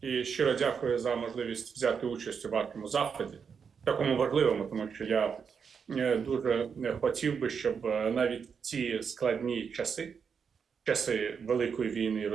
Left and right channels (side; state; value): left; quieter; 6.4 dB